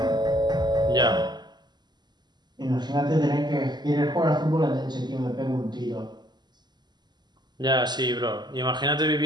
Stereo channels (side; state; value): left; late; 0.21 ms